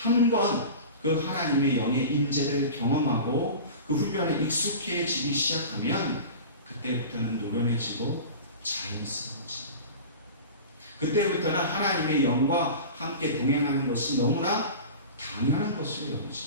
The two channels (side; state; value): both; inverted; correlation -0.33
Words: 그 하나님의 영의 임재를 경험하고 그 훈련에 익숙해지기 시작하면 그때부터는 노련해지고 자연스러워집니다. 그때부터는 하나님의 영과 함께 동행하는 것이 너무나 당연한 것으로